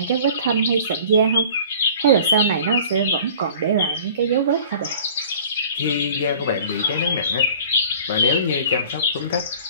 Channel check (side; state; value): both; inverted; correlation -0.46